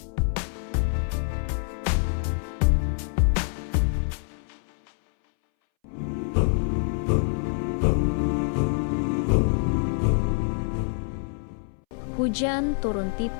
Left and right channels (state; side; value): silent; right; 61 dB below the other